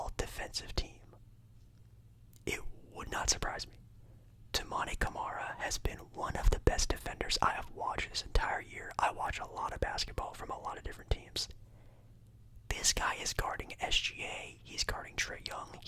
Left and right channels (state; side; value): identical; both; correlation 1.00